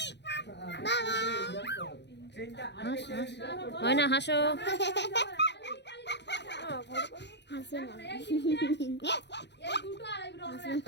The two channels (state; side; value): late; right; 0.50 ms